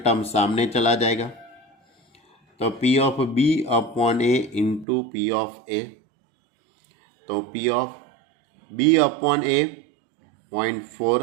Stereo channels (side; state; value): left; drops out; at 4.9 s